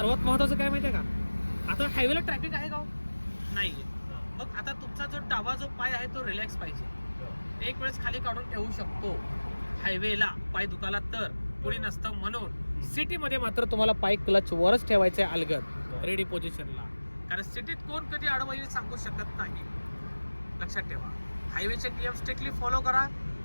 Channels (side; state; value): both; inverted; correlation -1.00